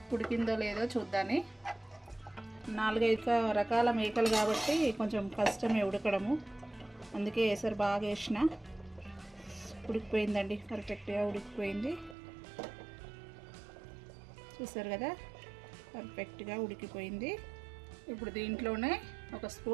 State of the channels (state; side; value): drops out; left; at 12.2 s